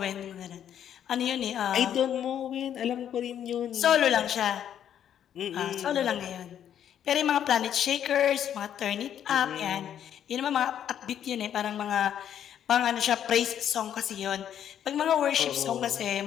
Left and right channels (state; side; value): quieter; right; 9.8 dB